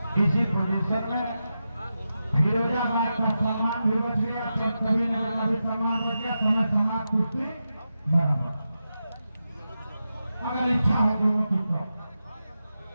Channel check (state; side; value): inverted; both; correlation -0.90